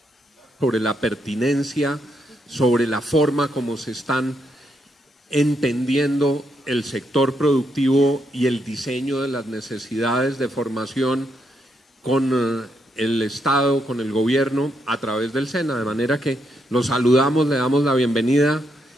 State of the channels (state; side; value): normal; both; correlation 0.79